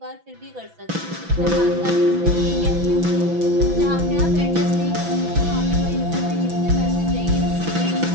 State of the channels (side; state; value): left; late; 6.0 ms